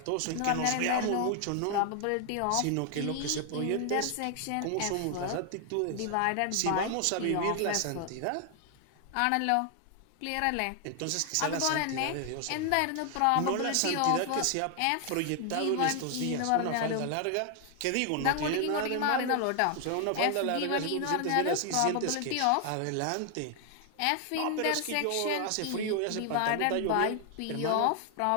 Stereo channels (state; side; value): different; both; correlation 0.00